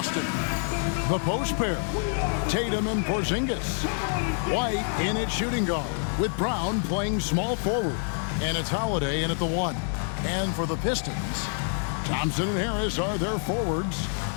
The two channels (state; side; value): silent; right; 58 dB below the other